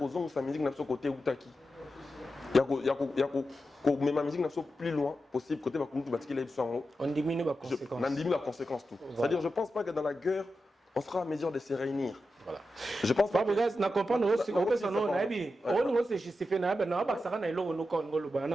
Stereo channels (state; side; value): normal; both; correlation 0.90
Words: sa musique na so côté utaki ko même ma musique na so plus loin possible côté ba kumtu batiki la biso on diminue la conséquence on diminue la conséquence tout voilà. C'est-à-dire je pense pas que dans la guerre on sera à mesure de se réunir. Voilà. Je pense pas. Parce que na comprendre aussi on peut s'en na bi on se justifie na ba na ba ça na ilo no Congo